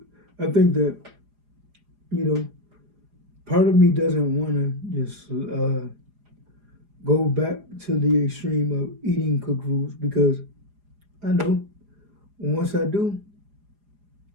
I think that you know part of me doesn't want to just go back to the extreme of eating cooked foods because I know once I do,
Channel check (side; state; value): left; late; 4.9 ms